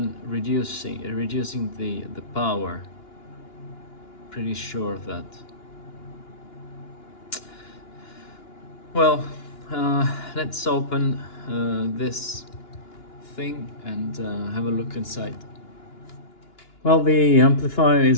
reducing the power. Pretty sure of that. Well, let's open this thing and have a look inside. Well, the amplifier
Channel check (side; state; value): right; late; 2.9 ms